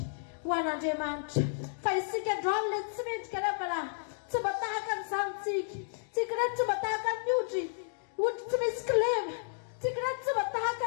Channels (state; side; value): silent; right; digital silence